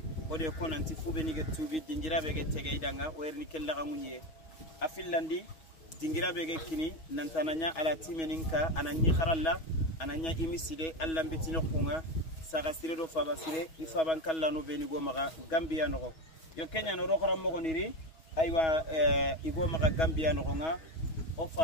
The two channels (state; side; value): late; right; 6.2 ms